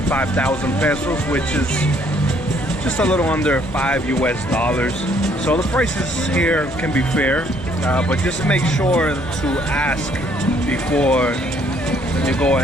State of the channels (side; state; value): both; normal; correlation 0.65